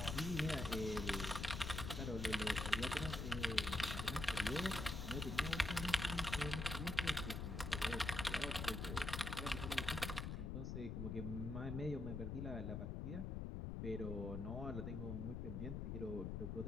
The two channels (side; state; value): left; noise; rumble, 3 dB below the sound